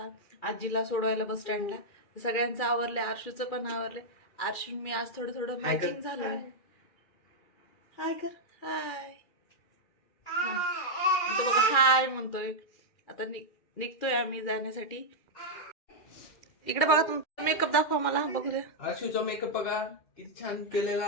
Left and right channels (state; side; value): late; right; 2.3 ms